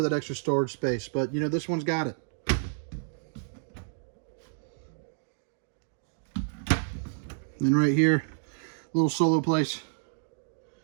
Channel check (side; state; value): left; silent; digital silence